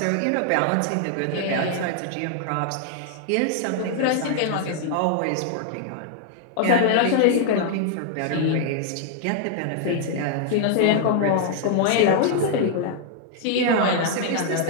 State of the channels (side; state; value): both; different; correlation 0.00